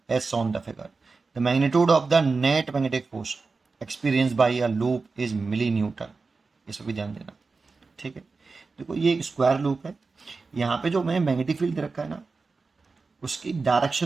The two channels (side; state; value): left; quieter; 4.2 dB